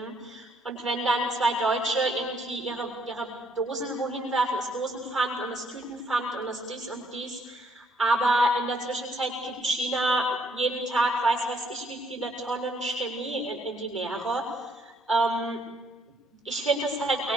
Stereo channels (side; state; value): both; normal; correlation 0.68